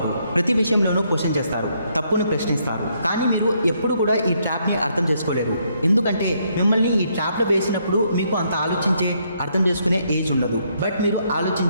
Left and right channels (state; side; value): inverted; both; correlation -0.73